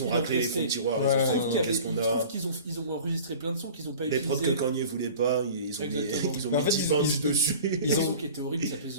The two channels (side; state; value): both; inverted; correlation -0.41